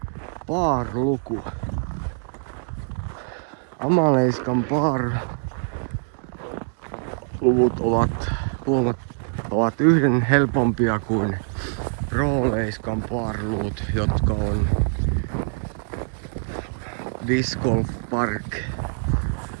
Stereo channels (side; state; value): left; silent; digital silence